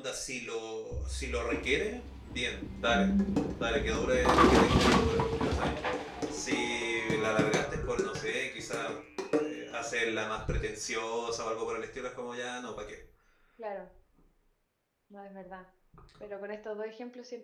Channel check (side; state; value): both; identical; correlation 1.00